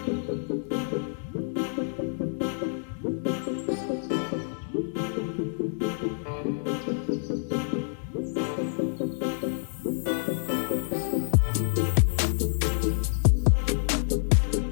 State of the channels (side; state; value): right; silent; digital silence